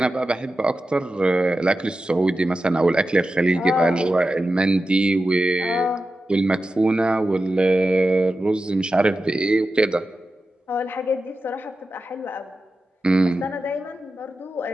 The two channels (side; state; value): both; normal; correlation 0.92